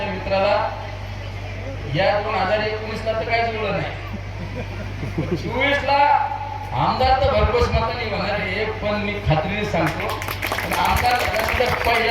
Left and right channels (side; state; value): both; identical; correlation 1.00